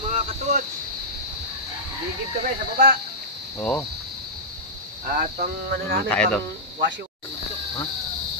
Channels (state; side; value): normal; both; correlation -0.13